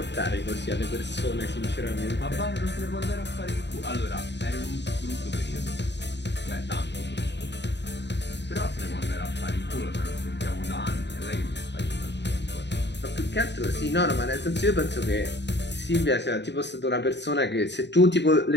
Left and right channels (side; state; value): right; late; 0.51 ms